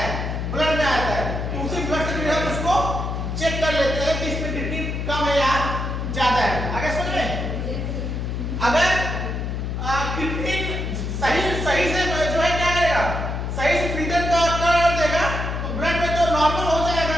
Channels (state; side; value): noise; left; hum, 3 dB below the sound